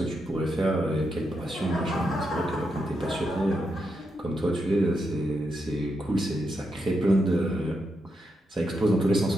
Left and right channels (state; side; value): normal; both; correlation 0.83